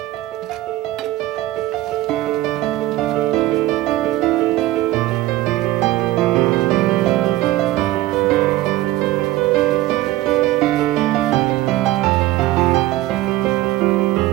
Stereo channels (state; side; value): quieter; left; 16.4 dB